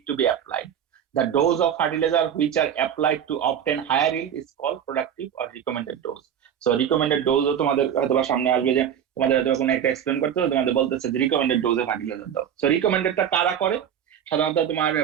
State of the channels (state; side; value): quieter; left; 9.0 dB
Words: to be applied. The dose of fertilizer which are applied to obtain higher yield is called productive or recommended dose. So recommended dose তোমাদের হয়তো সামনে আসবে, যে তোমাদের হয়তো কোনো একটা এক্সপ্লেন করতে হবে, তোমাদের বলতেছে যে রিকমেন্ডেড ডোজে ফার্টিলাইজার দাও। সো রিকমেন্ডেডটা কারা করে? সাধারণত তোমার